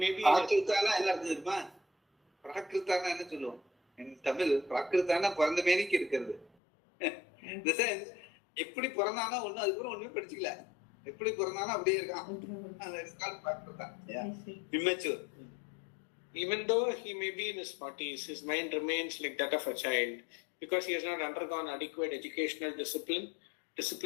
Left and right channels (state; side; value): drops out; right; at 6.5 s